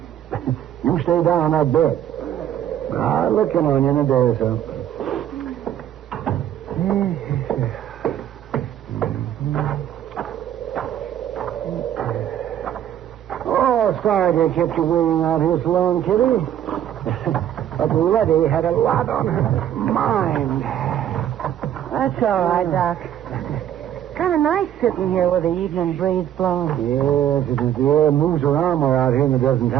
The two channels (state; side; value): quieter; left; 10.8 dB